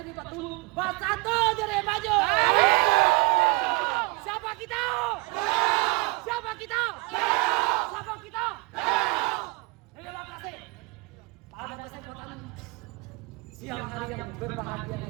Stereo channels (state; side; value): quieter; left; 25.8 dB